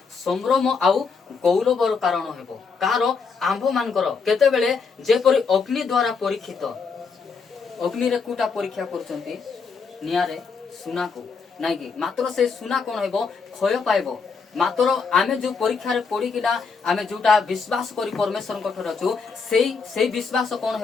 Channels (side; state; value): right; quieter; 5.1 dB